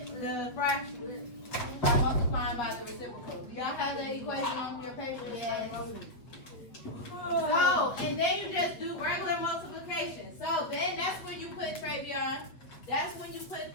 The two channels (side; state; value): right; late; 8.0 ms